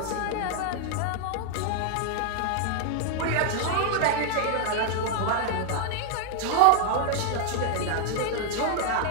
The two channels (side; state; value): both; different; correlation 0.00